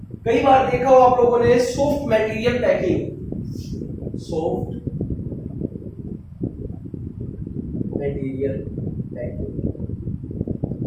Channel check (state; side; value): identical; both; correlation 1.00